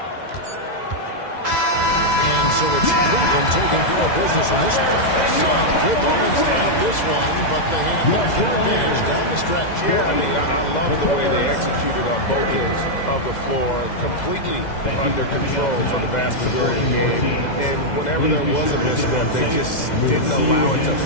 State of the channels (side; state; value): right; late; 2.0 ms